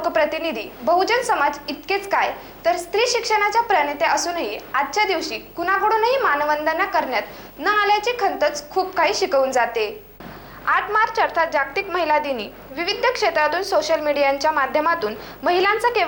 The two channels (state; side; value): noise; left; hum, 26 dB below the sound